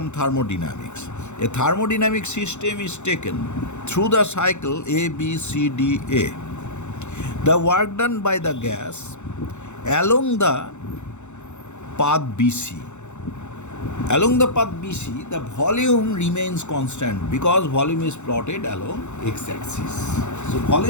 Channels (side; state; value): right; late; 0.83 ms